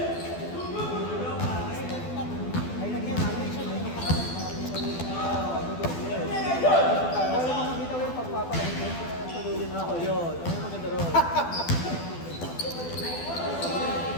Ay, lagyan natin. Ako yun. Ano yung maganda ron?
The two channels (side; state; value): right; late; 12 ms